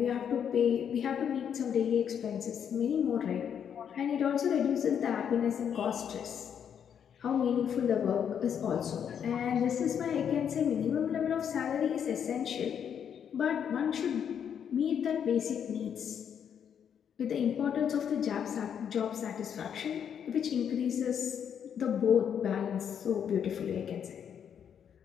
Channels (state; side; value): quieter; right; 8.2 dB